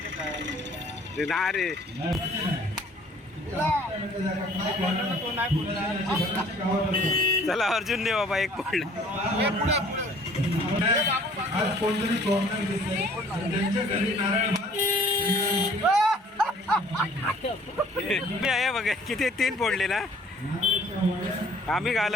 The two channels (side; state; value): both; normal; correlation 0.55